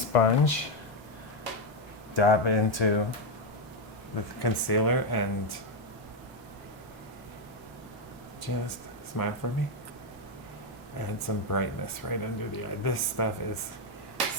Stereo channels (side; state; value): both; normal; correlation 0.05